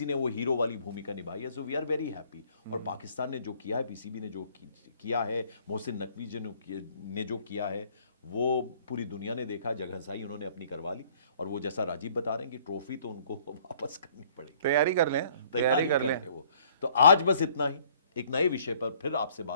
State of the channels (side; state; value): both; inverted; correlation -0.59